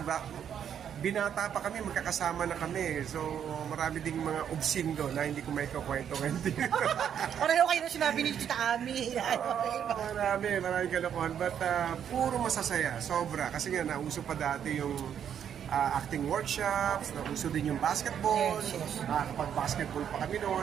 binata pa kami, magkakasama na kami. So, marami ding mga obscene doon na hindi ko may kakwento ngayon. Pareho kayo na sinabi ni Tita Ami. Marami kalokohan. But puro masasaya, sobra. Kasi nga, nauso pa dati yung acting workshops, nauso din yung basketball. Yes. Kapag basketball pa kami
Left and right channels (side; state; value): left; quieter; 8.8 dB